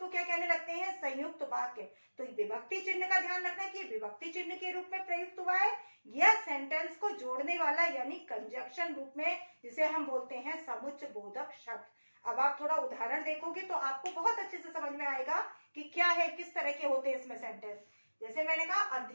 क्या कहने लगते हैं, संयुक्त वाक्य। तो विभक्ति चिन्ह का ध्यान रखना कि विभक्ति चिन्ह के रूप में प्रयुक्त हुआ है, या सेंटेंस को जोड़ने वाला यानी कंजक्शन रूप में, जिसे हम बोलते हैं समुच्चय बोधक शब्द। अब आप थोड़ा उदाहरण देखोगे तो आपको बहुत अच्छे से समझ में आएगा कि क्या है, किस तरह के होते हैं इसमें सेंटेंस। जैसे मैंने कहा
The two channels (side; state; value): both; inverted; correlation -1.00